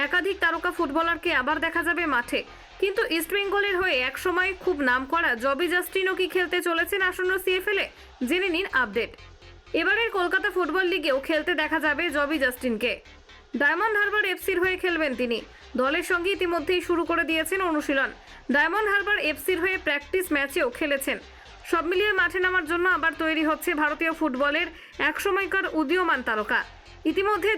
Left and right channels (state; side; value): identical; both; correlation 1.00